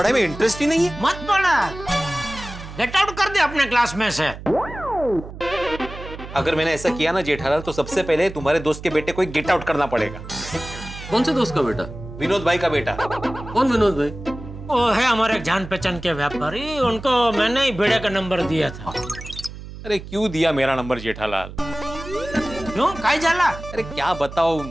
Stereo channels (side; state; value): right; noise; hum, 13 dB below the sound